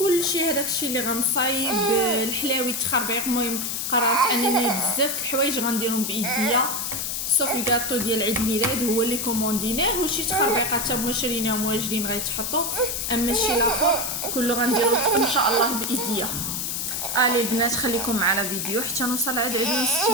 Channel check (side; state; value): left; noise; hiss, 2 dB below the sound